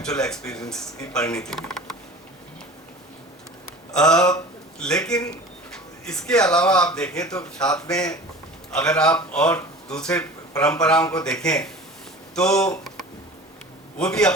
एक्सपीरियंस की परिणति हुई। लेकिन इसके अलावा आप देखें तो साथ में अगर आप और दूसरे परंपराओं को देखें तो वो भी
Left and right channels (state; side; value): normal; both; correlation 0.39